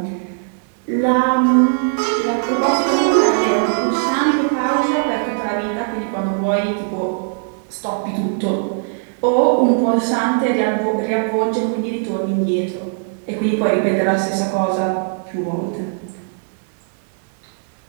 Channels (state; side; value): silent; left; 66 dB below the other